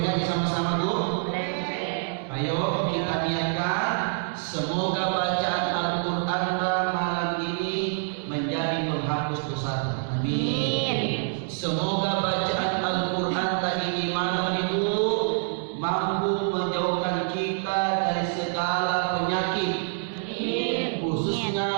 ngaji sama-sama bu? Ayo kita niatkan, semoga bacaan Al-Quran malam ini menjadi penghapus dosa. Amin. Semoga bacaan Al-Quran ini malam itu mampu menjauhkan kita dari segala penyakit. Amin.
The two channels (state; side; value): silent; left; 61 dB below the other